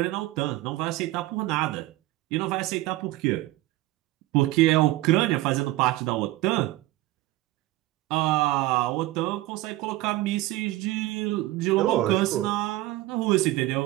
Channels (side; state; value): left; quieter; 17.8 dB